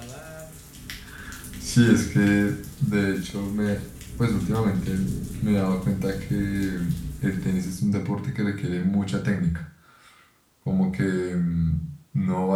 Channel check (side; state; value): both; identical; correlation 1.00